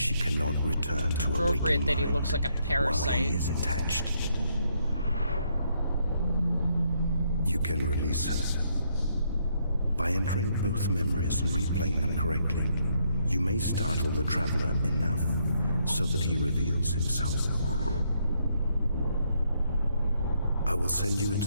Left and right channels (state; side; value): inverted; both; correlation -0.73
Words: cannot return to a waking Appropriate that he mind looks like a while parasite. he is attached. You can release her. By entering both memories and replaying them correctly, you may startle the Traveler enough so that he reveals himself. I will send you